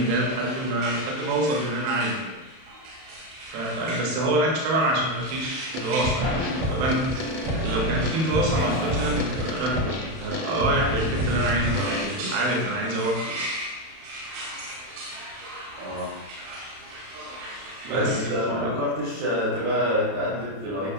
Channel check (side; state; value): left; late; 31 ms